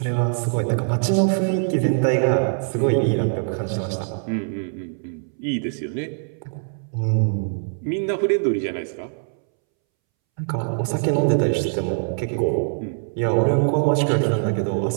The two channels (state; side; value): silent; left; 64 dB below the other